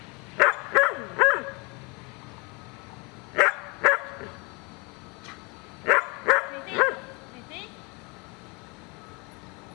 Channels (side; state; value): right; quieter; 29.4 dB